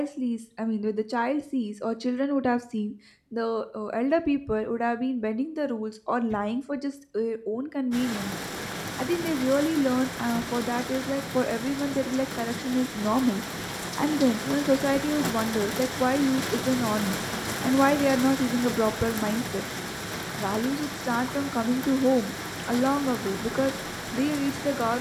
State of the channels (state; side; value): identical; both; correlation 1.00